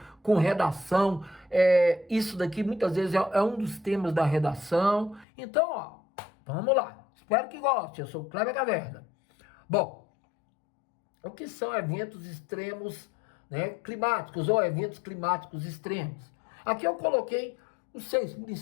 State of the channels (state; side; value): drops out; right; at 5.2 s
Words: com redação, isso daqui muitas vezes é um dos temas da redação. Então, ó, vamos lá. Espero que goste. Eu sou o Kleber Caverna. Bom, o que são eventos extremos, né, climáticos ou eventos climáticos extremos? Aqui eu coloquei os 6